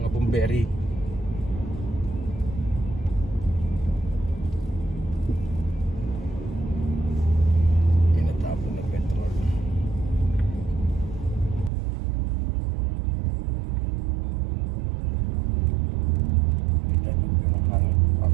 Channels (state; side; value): drops out; left; at 11.7 s